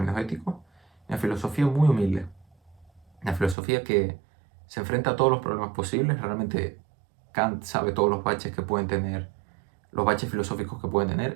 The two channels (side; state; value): left; drops out; at 3.6 s